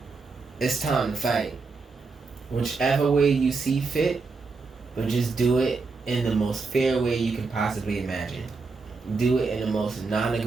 It's time to fight. Whichever way you see fit, but just do it in the most fair way you can possibly imagine. Do it in the most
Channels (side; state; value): left; quieter; 4.3 dB